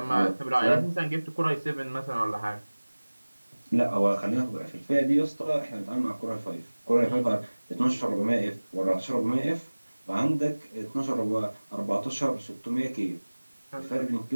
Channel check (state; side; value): inverted; both; correlation -1.00